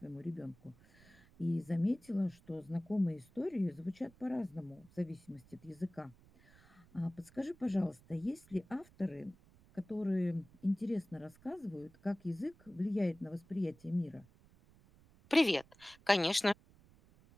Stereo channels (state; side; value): noise; right; rumble, 26 dB below the sound